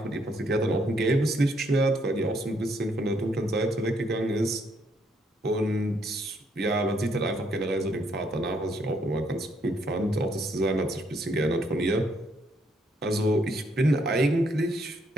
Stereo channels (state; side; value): normal; both; correlation 0.72